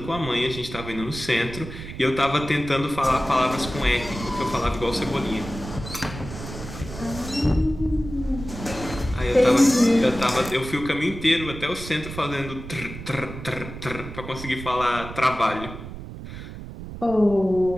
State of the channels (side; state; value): right; noise; rumble, 11 dB below the sound